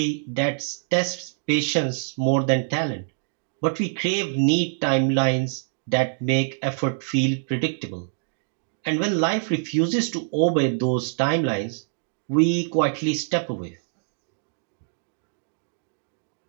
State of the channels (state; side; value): silent; left; digital silence